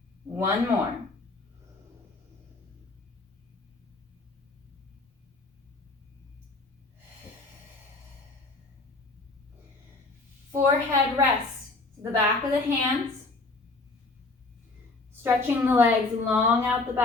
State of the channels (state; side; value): quieter; right; 3.4 dB